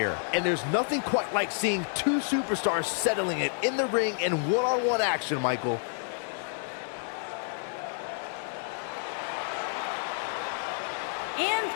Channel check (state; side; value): silent; right; digital silence